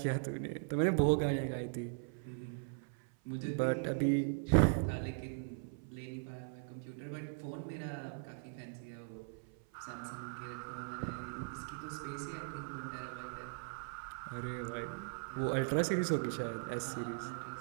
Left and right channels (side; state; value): left; silent; 52 dB below the other